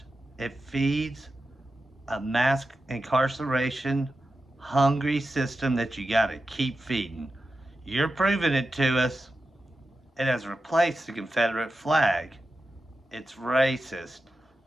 It feeds a mass incarceration, hungry system that you got to keep feeding. You're proving it to us. It has replaced the Confederate flag. It's racist.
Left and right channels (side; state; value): both; normal; correlation 0.91